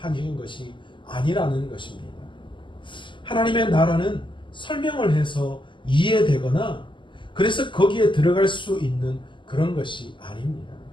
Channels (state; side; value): late; right; 0.24 ms